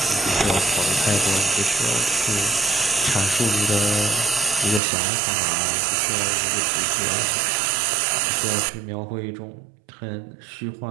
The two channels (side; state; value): left; drops out; at 4.8 s